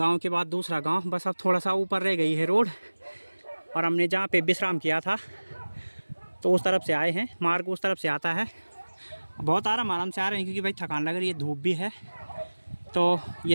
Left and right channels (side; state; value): both; inverted; correlation -1.00